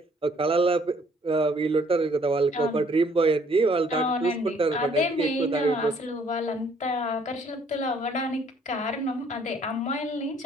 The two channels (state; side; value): normal; both; correlation 0.62